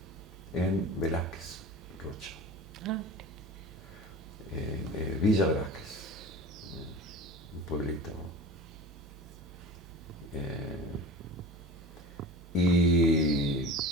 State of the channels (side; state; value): both; normal; correlation 0.36